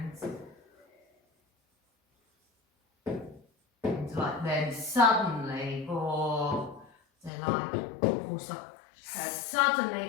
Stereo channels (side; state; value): right; drops out; at 7.3 s